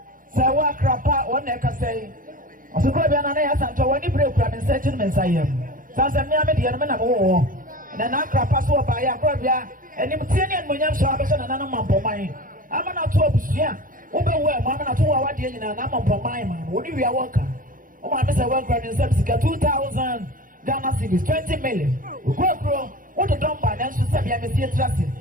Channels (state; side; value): late; left; 0.40 ms